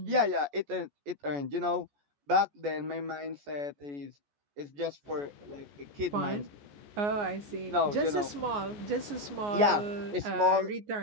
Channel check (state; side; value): late; left; 14 ms